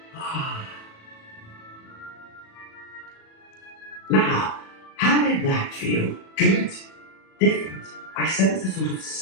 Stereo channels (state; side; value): late; right; 37 ms